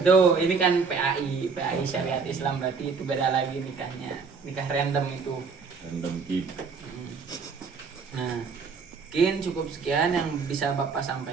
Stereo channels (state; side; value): quieter; left; 5.2 dB